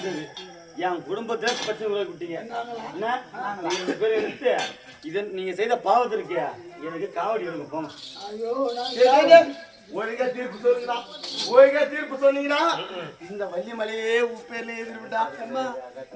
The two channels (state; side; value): identical; both; correlation 1.00